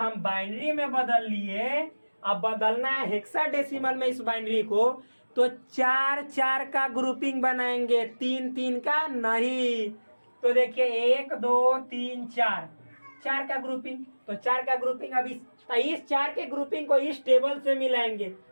बाइनरी में बदल लिए, अब बदलना है हेक्साडेसिमल में इस बाइनरी को, तो 4 का ग्रुपिंग बनाएंगे, 3 का नहीं। तो देखिए 1 2 3 4 का ग्रुपिंग, तो 4 का ग्रुपिंग अब इस 4 के ग्रुपिंग को इस टेबल से मिलाएंगे,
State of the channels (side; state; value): both; inverted; correlation -1.00